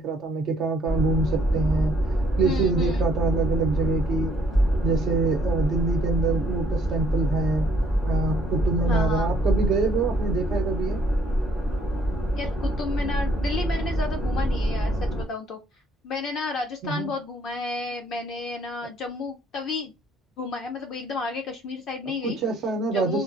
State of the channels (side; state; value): both; normal; correlation 0.65